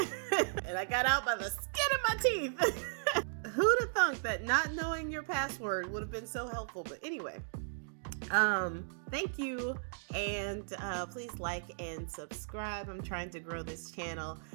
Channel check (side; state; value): left; silent; digital silence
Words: I got out by the skin of my teeth. Who'd have thunk that not knowing your password would have been so helpful? But anyway, thank you, and please like and subscribe. I'm trying to grow this channel,